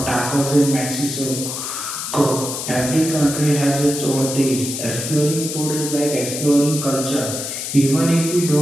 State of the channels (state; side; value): noise; left; hiss, 5 dB below the sound